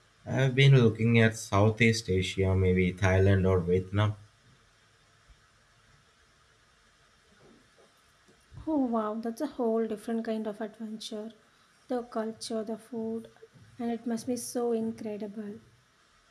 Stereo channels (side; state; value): both; identical; correlation 1.00